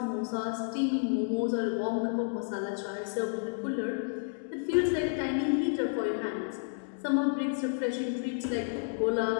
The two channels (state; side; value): silent; right; digital silence